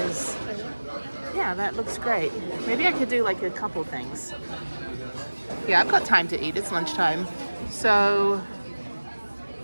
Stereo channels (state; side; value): inverted; both; correlation -1.00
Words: yeah, that looks great. Maybe I could do like a couple things. Yeah, I've got time to eat. It's lunchtime. So